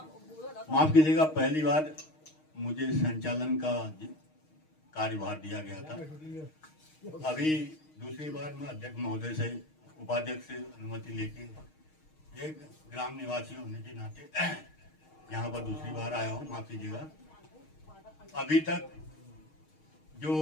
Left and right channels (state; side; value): late; right; 6.4 ms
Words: माफ कीजिएगा, पहली बार मुझे संचालन का कार्यभार दिया गया था। अभी दूसरी बार मैं अध्यक्ष महोदय से, उपाध्यक्ष से अनुमति लेके एक ग्राम निवासी होने के नाते यहाँ पर दूसरी बार आया हूँ। माफ कीजिएगा, अभी तक जो